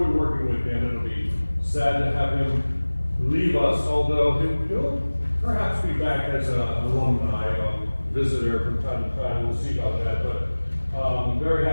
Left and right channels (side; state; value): both; inverted; correlation -1.00